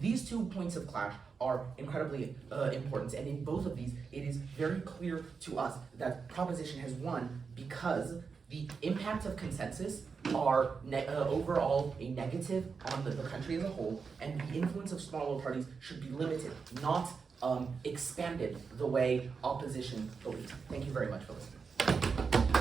These 2 points of clash are incredibly important, and in both of these, it is very clear to us that proposition has won because the impact of consensus are overall a negative on the country as a whole, and the influence of smaller parties should be limited, not expanded the way opposition believes. Thank you very much for listening.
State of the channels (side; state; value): left; quieter; 5.3 dB